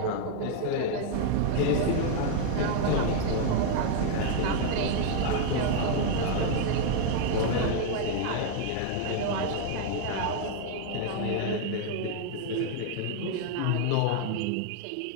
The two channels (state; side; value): different; both; correlation 0.00